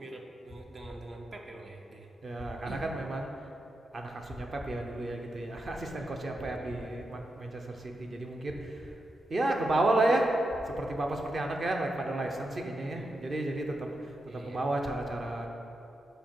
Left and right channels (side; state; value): both; normal; correlation 0.87